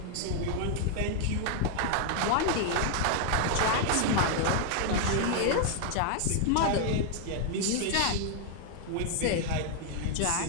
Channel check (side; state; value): both; different; correlation 0.00